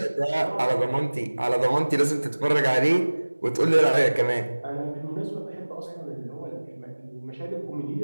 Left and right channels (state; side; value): inverted; both; correlation -1.00